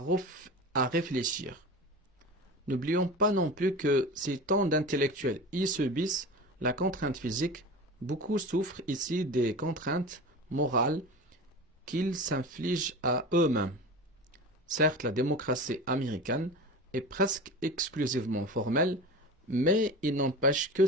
réfléchir. N'oublions pas non plus que si tant d'intellectuels y subissent la contrainte physique, beaucoup souffrent ici des contraintes morales qu'ils s'infligent à eux-mêmes. Certes, la démocratie américaine est presque exclusivement formelle, mais il n'empêche que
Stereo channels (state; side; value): normal; both; correlation 0.31